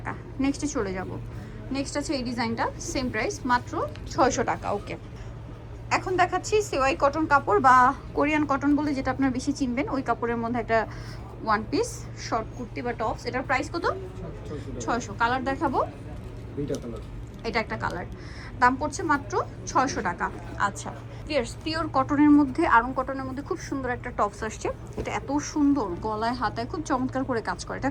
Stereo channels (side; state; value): both; identical; correlation 1.00